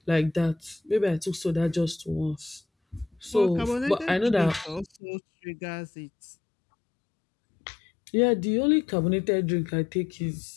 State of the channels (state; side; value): drops out; right; at 4.9 s